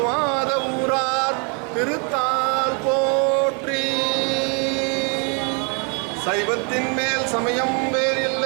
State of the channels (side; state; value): left; quieter; 37.3 dB